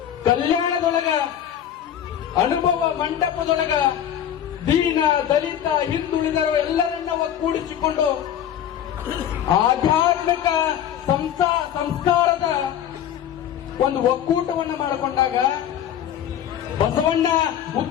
ಕಲ್ಯಾಣದೊಳಗ, ಅನುಭವ ಮಂಟಪದೊಳಗ ದೀನ ದಲಿತ ಹಿಂದುಳಿದರು ಎಲ್ಲರನ್ನ ಒಗ್ಗೂಡಿಸಿಕೊಂಡು ಆಧ್ಯಾತ್ಮಿಕ ಸಂಸ್ಕಾರದ ಒಂದು ಒಕ್ಕೂಟವನ್ನ ಮಾಡಿಕೊಂಡಾಗ ಬಸವಣ್ಣ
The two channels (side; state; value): right; quieter; 10.2 dB